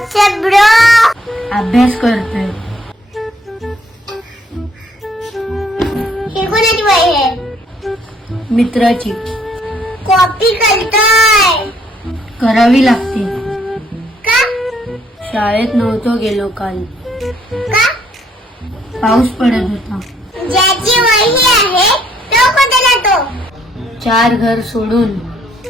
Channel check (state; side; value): normal; both; correlation 0.67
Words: bro. अभ्यास करतोय. हे कोणाची वही आहे? मित्राची. कॉपी करतोय करावी लागते. का? शाळेत नव्हतो गेलो काल. का? पाऊस पडत होता. ज्याची वही आहे तो कोणता जातो? 4 घर सोडून.